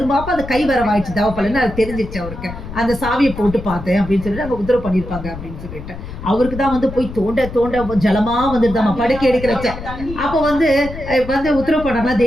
அந்த கை வரவாயிடுச்சு தவப்பலன்னு அது தெரிஞ்சிருச்சு அவருக்கு. அந்த சாவியை போட்டு பார்த்தேன் அப்படின்னு சொல்லிட்டு அங்கே உத்தரவு பண்ணியிருப்பாங்க அப்படின்னு சொல்லிட்டு அவருக்கு தான் வந்து போய் தோண்ட தோண்ட ஜலமா வந்துருதாமா படுக்கை எடுக்கிறச்ச. அப்போ வந்து உத்தரவு பண்ணாங்களா,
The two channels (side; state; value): left; noise; rumble, 11 dB below the sound